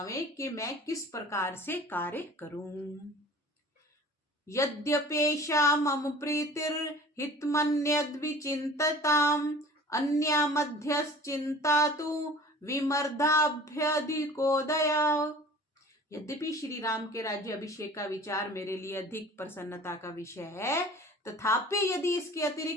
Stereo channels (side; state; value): both; normal; correlation 0.44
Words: कि मैं किस प्रकार से कार्य करूं। यद्यपेषा मम प्रीतिर्हितमन्यद्विचिन्तताम् अन्या मध्यश्चिन्ता तु विमर्दाभ्यधिकोदया। यद्यपि श्री राम के राज्य अभिषेक का विचार मेरे लिए अधिक प्रसन्नता का विषय है, तथापि यदि इसके